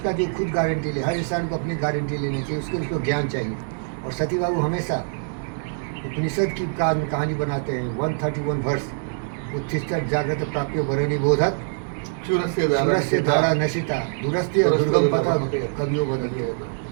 जो खुद गारंटी ले। हर इंसान को अपनी गारंटी लेनी चाहिए, उसको ज्ञान चाहिए। और सती बाबू हमेशा उपनिषद की कहानी बनाते हैं। 131 वर्ष उत्तिष्ठत् जागृत प्राप्यो वरुणी बोधक सूरस्य धारा नशिता दूरस्थ्य दुर्गम पथा कवियों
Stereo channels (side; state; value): left; silent; digital silence